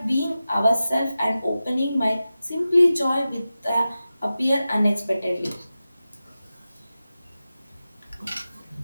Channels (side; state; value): both; inverted; correlation -0.94